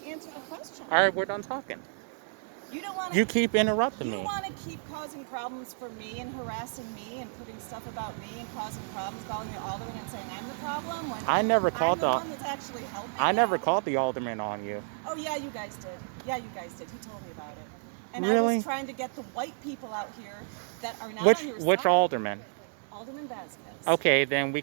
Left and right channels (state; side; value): silent; left; digital silence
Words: answer the question. All right, we're done talking. You don't want You keep interrupting me. You want to keep causing problems for me and harassing me and putting stuff about me and causing problems, calling the alderman and saying I'm the problem when I never called I'm the one that's actually helping I you? never called the alderman on you. Oh yeah, you guys did. Yeah, you guys did. He told me about it. And Really? I was trying to get the white people out here that are not on your side. Which alderman? Alderman Vasquez. Okay, then we